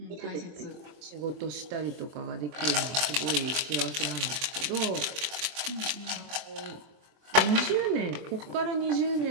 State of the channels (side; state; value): left; late; 24 ms